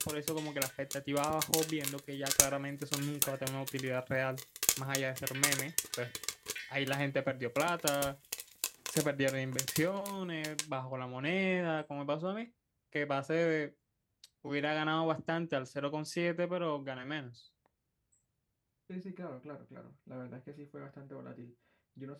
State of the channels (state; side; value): identical; both; correlation 1.00